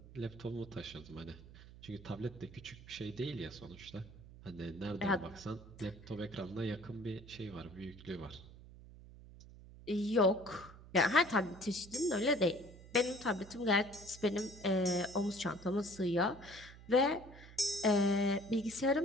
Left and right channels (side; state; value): right; noise; hum, 18 dB below the sound